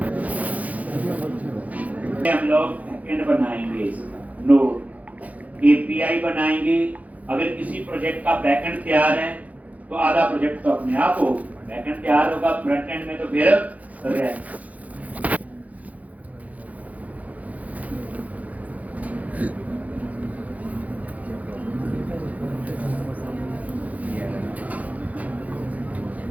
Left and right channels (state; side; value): late; left; 0.073 ms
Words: हम लोग बैकएंड बनाएंगे, नोड API बनाएंगे। अगर किसी प्रोजेक्ट का बैकएंड तैयार है तो आधा प्रोजेक्ट तो अपने आप हो, बैकएंड तैयार होगा, फ्रंट एंड में तो फिर रहे।